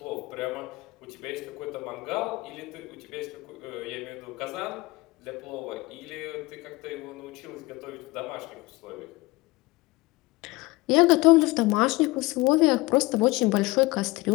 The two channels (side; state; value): right; quieter; 21.5 dB